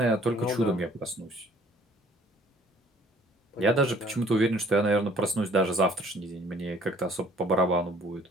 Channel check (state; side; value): normal; both; correlation 0.57